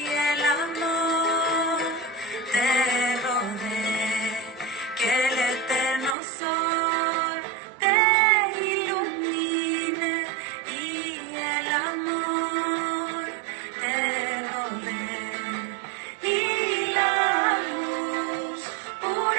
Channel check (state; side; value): drops out; left; at 6.2 s